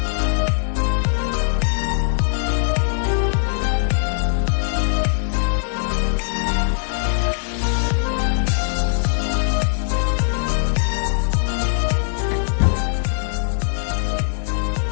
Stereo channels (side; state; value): right; silent; digital silence